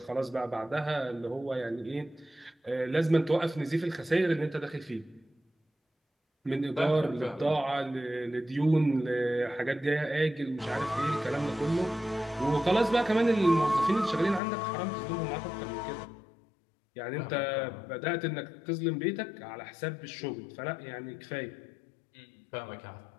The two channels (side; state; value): right; drops out; at 14.4 s